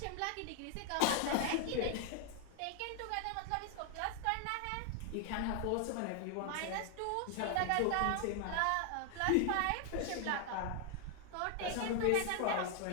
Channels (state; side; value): different; both; correlation 0.00